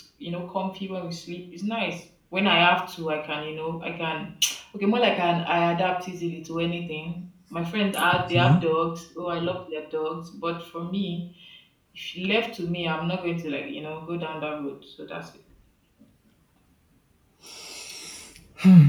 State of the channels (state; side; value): identical; both; correlation 1.00